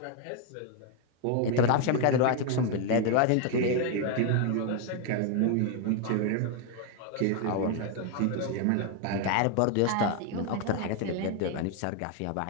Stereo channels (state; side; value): different; both; correlation 0.01